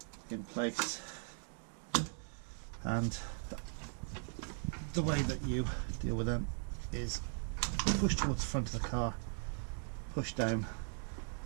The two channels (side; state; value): left; silent; 52 dB below the other